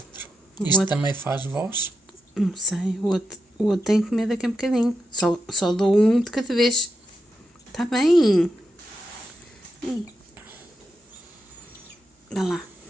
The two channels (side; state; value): both; normal; correlation 0.87